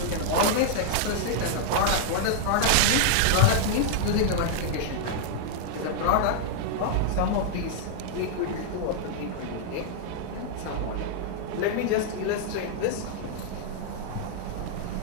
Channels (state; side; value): different; both; correlation -0.01